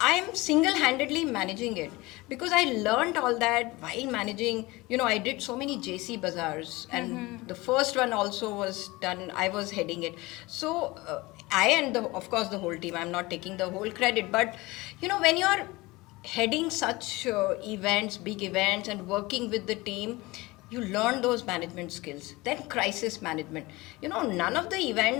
single-handedly managing it because I learned all that while managing. I did so many JC bazaars, and the first one also was done. I was heading it. So I and of course the whole team. I'm not taking the whole credit, but when you're heading such events, big events, and working with the team, you learn those management skills. Then crisis management. None of the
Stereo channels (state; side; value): quieter; right; 21.7 dB